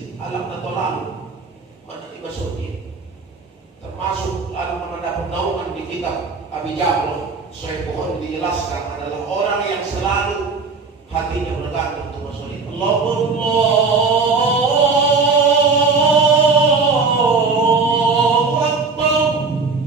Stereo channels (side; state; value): left; quieter; 4.4 dB